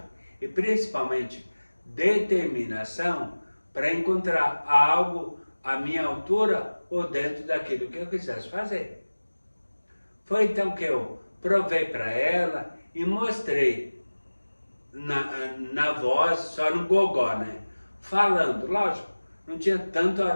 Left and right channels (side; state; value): both; inverted; correlation -1.00